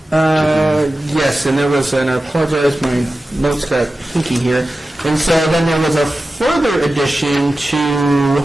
Yes, and there was, and I apologize, my notes got hinky here. And so then there was a further addition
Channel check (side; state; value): both; normal; correlation 0.94